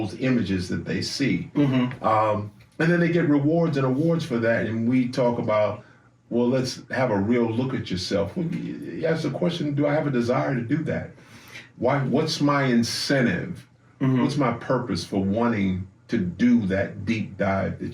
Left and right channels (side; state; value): both; identical; correlation 1.00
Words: images that they see. And then they get rewards and awards for that, and we talk about, well, let's have a real look at yourself. Well, you ask the question, do I have a desire to do that? Why? What's my incentive? What's my purpose for wanting to do that deep dive